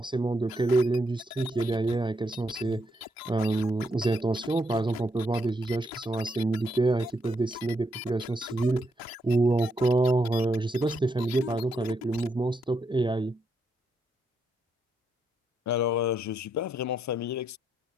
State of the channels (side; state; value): both; normal; correlation 0.78